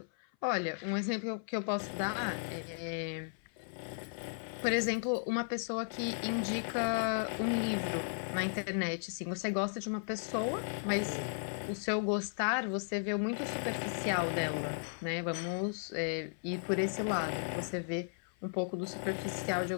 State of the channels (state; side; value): silent; right; 54 dB below the other